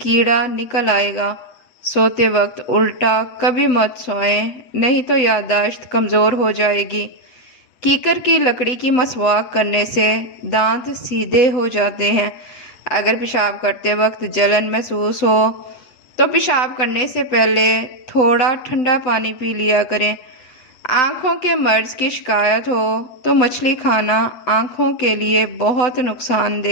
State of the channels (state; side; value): late; right; 8.2 ms